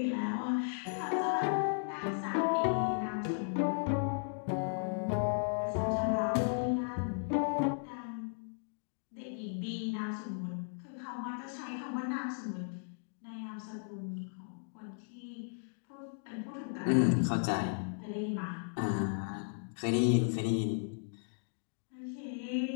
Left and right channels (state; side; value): silent; right; digital silence